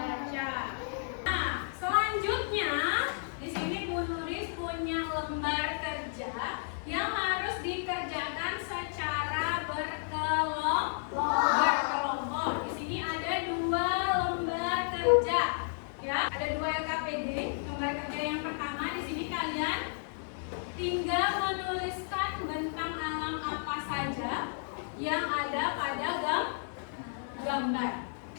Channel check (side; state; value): right; silent; 56 dB below the other